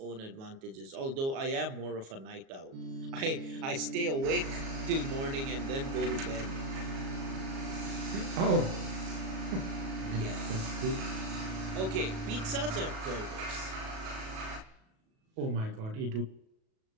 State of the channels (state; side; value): late; left; 37 ms